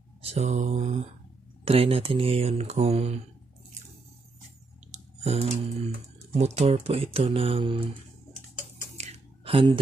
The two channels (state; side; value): quieter; left; 3.8 dB